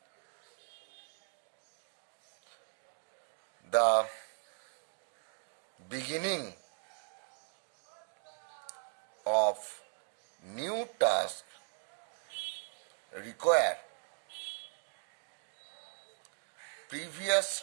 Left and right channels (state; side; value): silent; left; 52 dB below the other